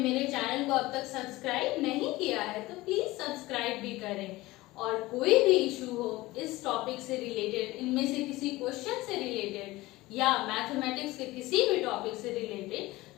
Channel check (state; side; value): quieter; right; 19.2 dB